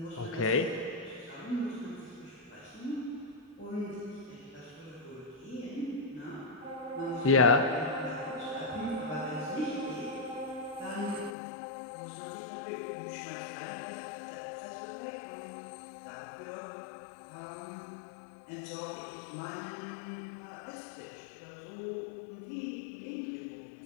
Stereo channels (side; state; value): right; drops out; at 11.3 s